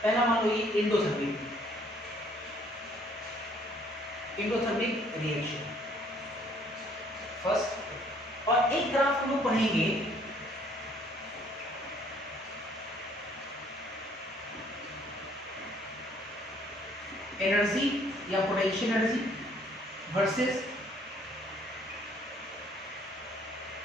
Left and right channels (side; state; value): both; normal; correlation 0.61